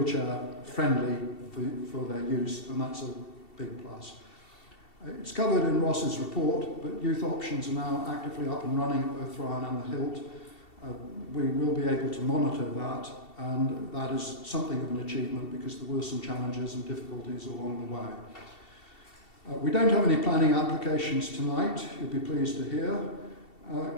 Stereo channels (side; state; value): right; late; 2.7 ms